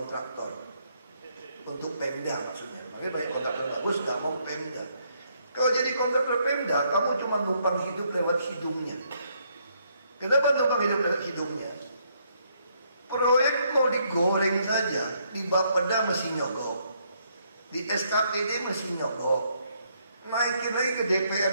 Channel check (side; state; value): both; inverted; correlation -0.72